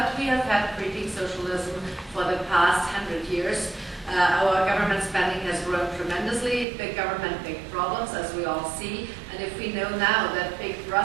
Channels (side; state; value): left; drops out; at 6.7 s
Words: we have had creeping socialism for the past 100 years. Our government spending has grown tremendously. Big government, big problems, as we all see. And if we know now that big